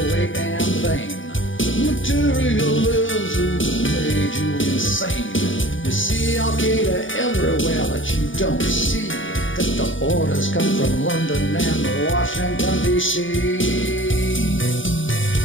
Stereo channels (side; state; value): right; late; 0.57 ms